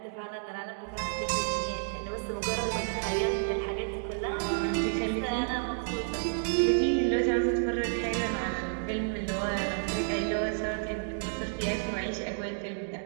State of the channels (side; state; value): left; silent; digital silence